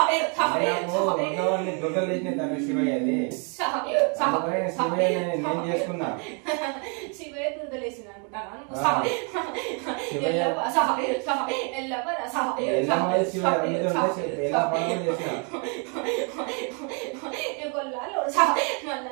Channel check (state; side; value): quieter; left; 37.0 dB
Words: శివయ్య దురదలేసింది అనుకుంటాను కొల్లాలో